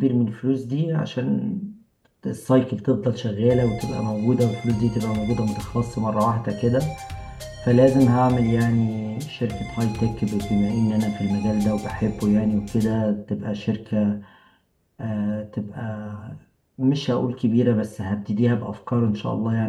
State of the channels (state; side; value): identical; both; correlation 1.00